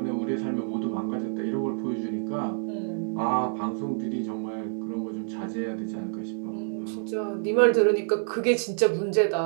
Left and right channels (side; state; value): left; silent; digital silence